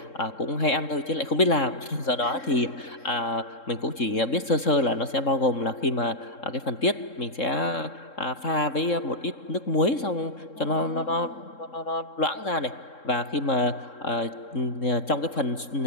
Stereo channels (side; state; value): right; late; 3.7 ms